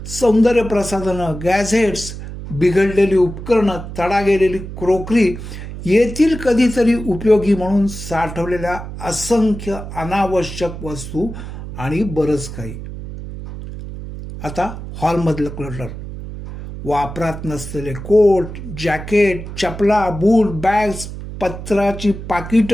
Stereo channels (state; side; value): noise; right; hum, 10 dB below the sound